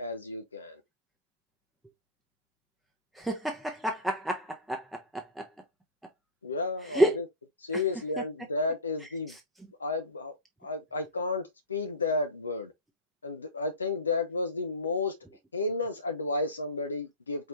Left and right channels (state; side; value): normal; both; correlation -0.10